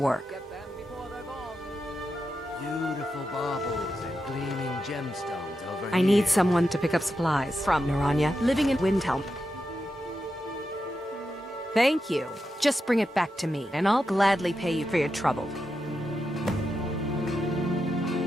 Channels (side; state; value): both; normal; correlation 0.88